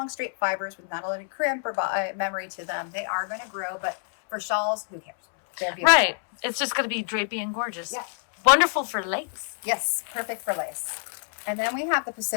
straight fibers with not a lot of crimp or memory to them, they are going to grow. But for shawls, who cares? They're beautiful. Right. It's just going to be drapey and gorgeous. Yeah. Wonderful for lace. Yes, perfect for lace. And then we have the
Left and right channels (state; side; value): silent; right; 60 dB below the other